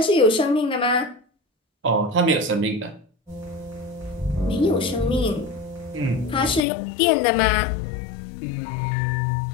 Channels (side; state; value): right; drops out; at 6.6 s